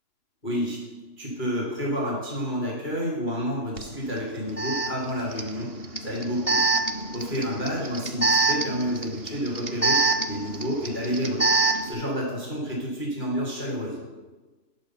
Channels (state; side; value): late; right; 3.0 ms